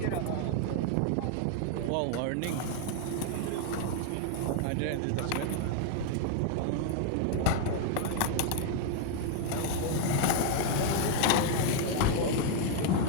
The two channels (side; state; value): both; different; correlation 0.00